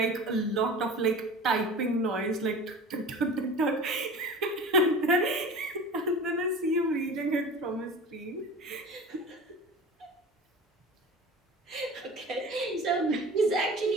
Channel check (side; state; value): both; normal; correlation 0.36